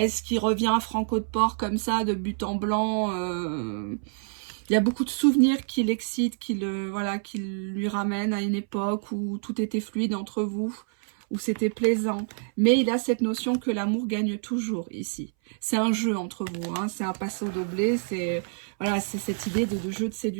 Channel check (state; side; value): silent; left; 60 dB below the other